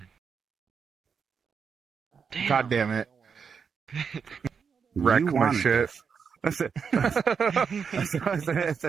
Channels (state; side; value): quieter; left; 6.3 dB